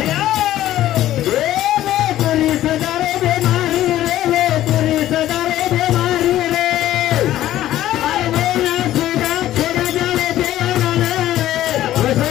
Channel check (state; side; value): quieter; right; 13.6 dB